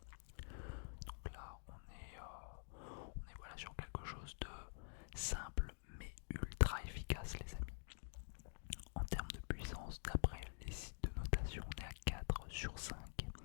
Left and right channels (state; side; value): silent; right; digital silence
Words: Donc là on est voilà sur quelque chose de simple mais ultra efficace les amis. En termes de puissance, d'après les sites de notation, on est à 4 sur 5.